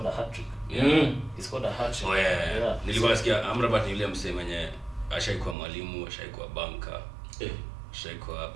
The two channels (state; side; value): drops out; left; at 5.6 s